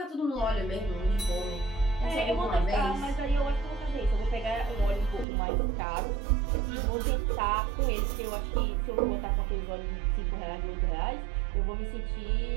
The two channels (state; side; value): drops out; left; at 5.2 s